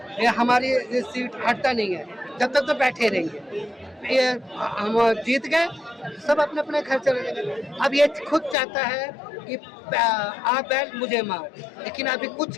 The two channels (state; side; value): drops out; right; at 8.6 s